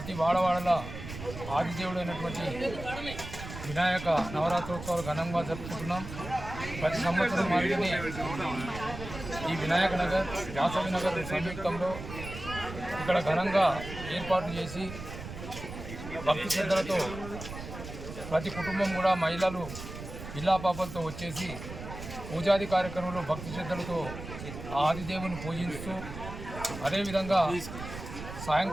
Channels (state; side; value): noise; right; rumble, 10 dB below the sound